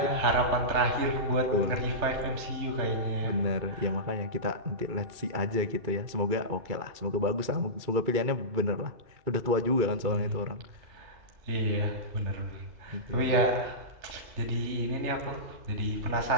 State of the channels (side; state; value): left; late; 2.3 ms